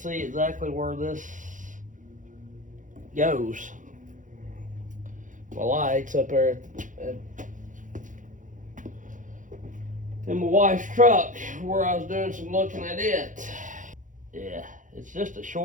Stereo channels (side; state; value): left; late; 0.37 ms